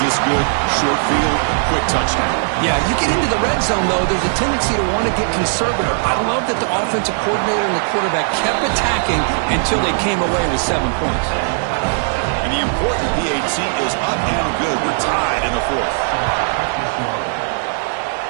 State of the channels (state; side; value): silent; left; 65 dB below the other